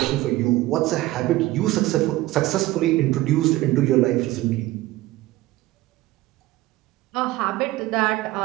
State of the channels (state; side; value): quieter; left; 17.5 dB